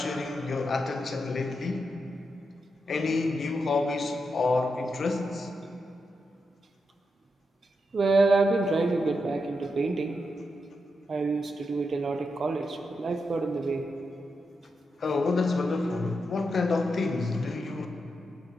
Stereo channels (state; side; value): normal; both; correlation 0.85